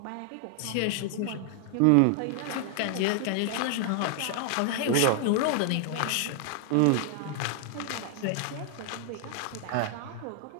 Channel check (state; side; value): different; both; correlation 0.00